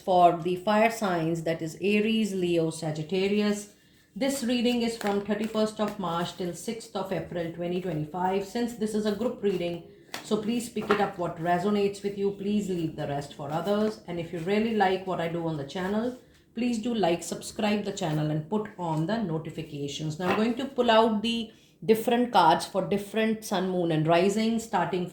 the fire signs, that is Aries, Leo, Sagittarius. This reading is from 31st of March till 6th of April 2025. Since this is a group reading, so please pick it up what resonates with you. Please leave the rest for others. And if you really like what I do on the channel, please do like, subscribe the channel and put on the notifications. Now I'm going to pull out the different cards for different sun, moon and rising, starting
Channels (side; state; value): both; identical; correlation 1.00